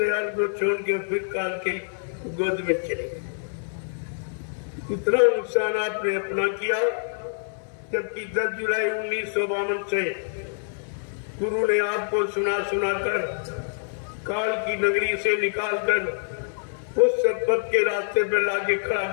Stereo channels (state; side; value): silent; right; digital silence